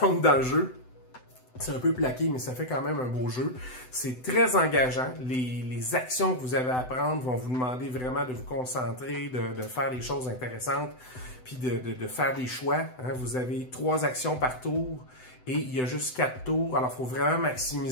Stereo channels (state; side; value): late; right; 7.9 ms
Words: dans le jeu. C'est un peu plaqué, mais ça fait quand même un beau jeu. C'est très engageant. Les actions que vous avez à prendre vont vous demander vraiment de vous concentrer, de faire des choses intéressantes, puis de faire des choix. Hein. Vous avez 3 actions par tour et il y a juste 4 tours. Alors, il faut vraiment